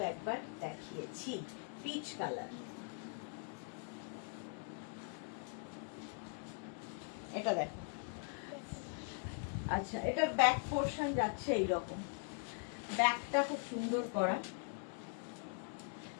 একবার দেখিয়েছি, পিচ কালার। এটা দেখো, আচ্ছা এটার ব্যাক পোর্শন যাচ্ছে এইরকম, ব্যাকটা খুব সুন্দর করা,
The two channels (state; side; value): silent; right; 50 dB below the other